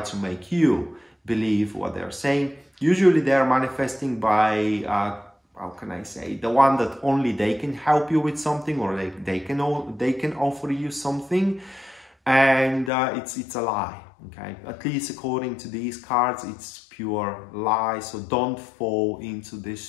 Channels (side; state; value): right; drops out; at 12.9 s